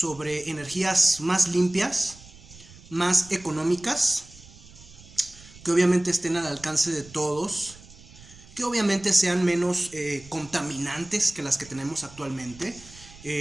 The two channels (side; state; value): right; noise; rumble, 21 dB below the sound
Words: energías más limpias, más económicas, que obviamente estén al alcance de todos, que obviamente sean menos contaminantes que las que tenemos actualmente.